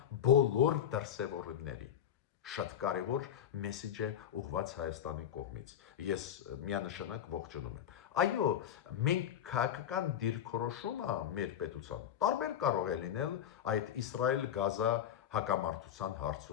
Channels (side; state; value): right; quieter; 9.8 dB